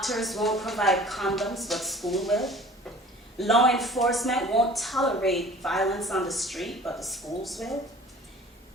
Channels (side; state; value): both; normal; correlation 0.46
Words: won't provide condoms, but school will. Law enforcement won't tolerate violence on the street, but the schools will.